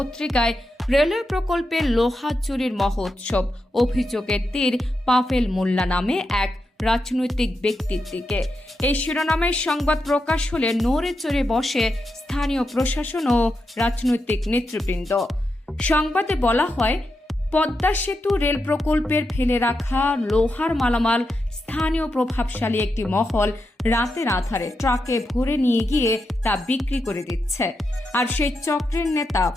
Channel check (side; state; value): both; normal; correlation 0.86